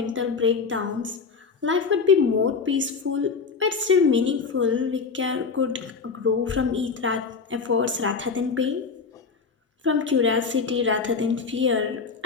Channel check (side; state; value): right; quieter; 5.1 dB